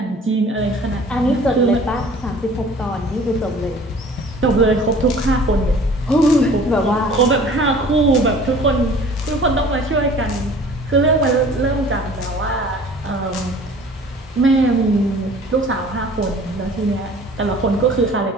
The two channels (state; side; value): normal; both; correlation 0.48